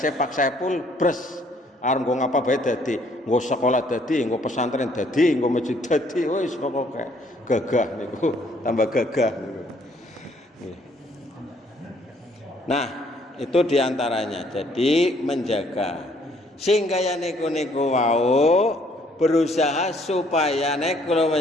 Pak Saipul bres arep nggo ngapa bae dadi, nggo sekolah dadi, nggo pesantren dadi, nggo masjid dadi, wis pokoke gagah niku, tambah gagah niku. Nah, itu diantaranya. Jadi menjaga sehingga ya niku wau berusaha supaya nek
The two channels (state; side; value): normal; both; correlation 0.64